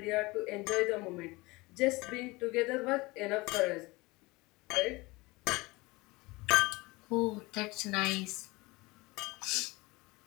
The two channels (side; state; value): right; quieter; 23.0 dB